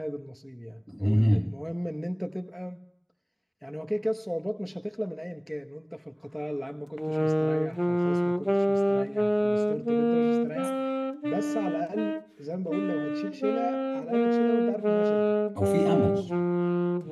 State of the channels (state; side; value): identical; both; correlation 1.00